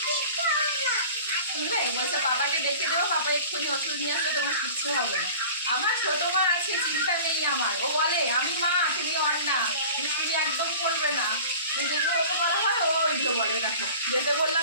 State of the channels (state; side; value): inverted; both; correlation -0.41